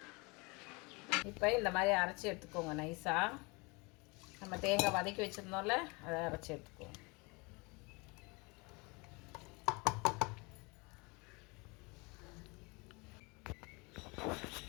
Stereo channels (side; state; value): right; quieter; 27.7 dB